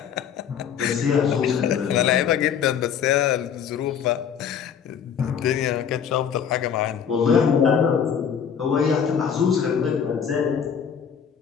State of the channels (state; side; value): quieter; right; 7.7 dB